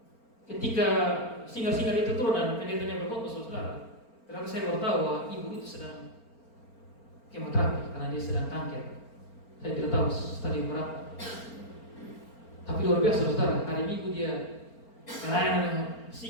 Ketika singar-singar itu turun dan pendetanya berkhotbah, saudara, ternyata saya baru tahu bahwa ibu itu sedang kemoterapi karena dia sedang kanker. Saya tidak tahu stadium berapa. Tapi luar biasa, saudara. Hari Minggu dia melayani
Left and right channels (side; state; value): right; late; 4.4 ms